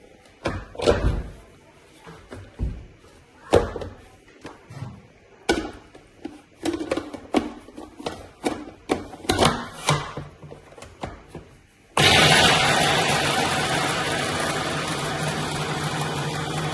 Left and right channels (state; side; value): identical; both; correlation 1.00